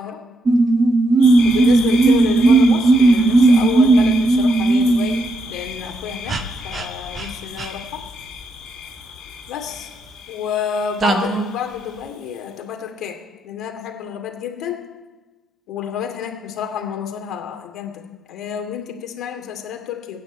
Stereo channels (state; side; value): normal; both; correlation 0.79